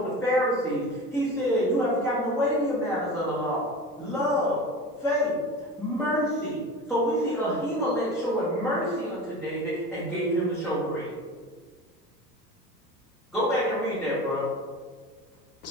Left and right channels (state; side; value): normal; both; correlation 0.33